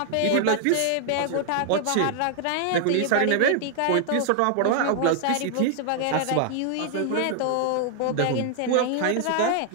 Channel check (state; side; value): different; both; correlation -0.01